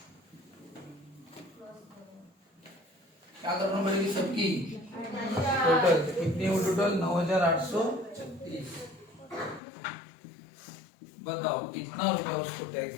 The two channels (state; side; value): drops out; right; at 9.6 s